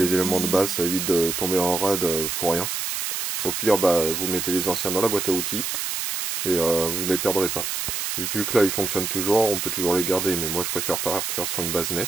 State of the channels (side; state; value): right; noise; hiss, 2 dB below the sound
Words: éléments de base, ça évite de tomber en rade pour rien. Au pire vous mettez les anciens dans la boîte à outils et vous ne les perdrez pas. Et vu que là ils fonctionnent toujours, on peut toujours les garder, mais moi je préfère partir sur une base